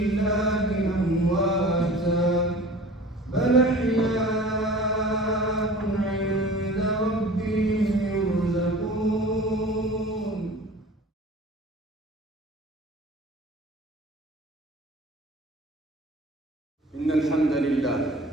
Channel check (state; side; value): normal; both; correlation 0.42